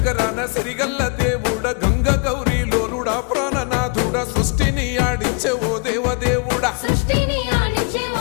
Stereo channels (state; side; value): quieter; right; 34.7 dB